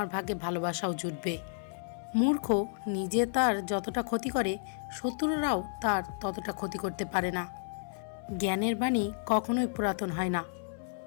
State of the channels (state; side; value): silent; right; 57 dB below the other